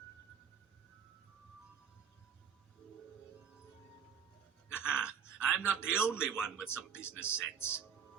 I'm not the only one with some business sense.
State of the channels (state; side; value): quieter; left; 7.5 dB